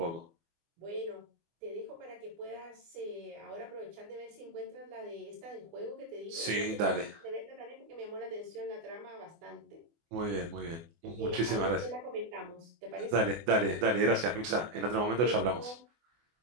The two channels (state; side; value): late; left; 24 ms